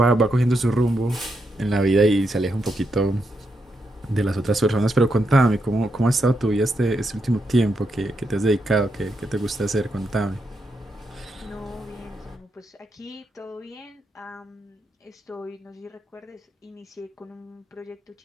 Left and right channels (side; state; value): both; normal; correlation 0.82